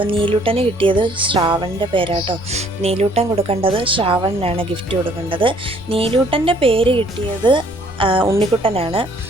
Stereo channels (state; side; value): noise; left; rumble, 20 dB below the sound